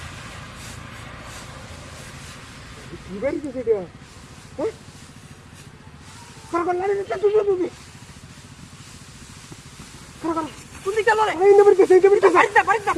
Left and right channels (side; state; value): both; identical; correlation 1.00